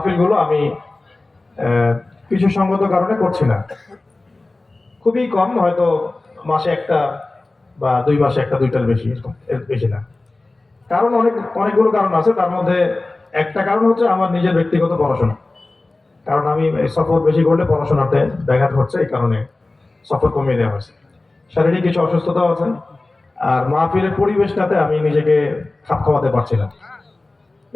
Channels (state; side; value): quieter; right; 3.1 dB